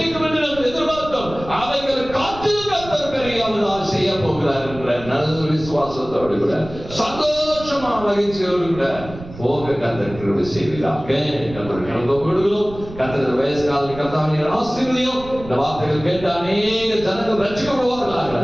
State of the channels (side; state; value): right; noise; rumble, 15 dB below the sound